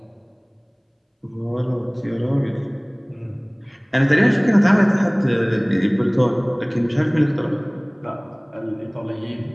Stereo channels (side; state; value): both; identical; correlation 1.00